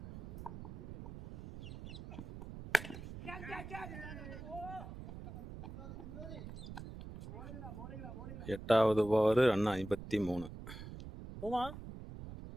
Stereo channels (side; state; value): right; noise; rumble, 11 dB below the sound